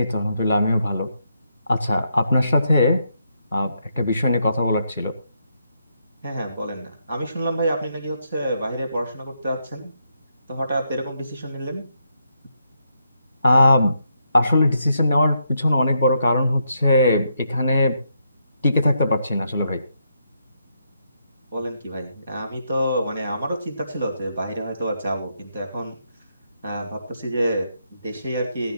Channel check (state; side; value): inverted; both; correlation -0.78